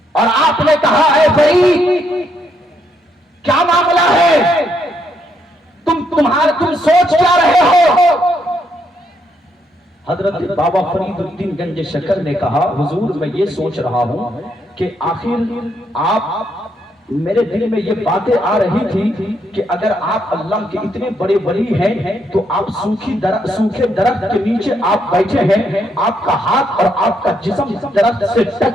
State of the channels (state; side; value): normal; both; correlation 0.75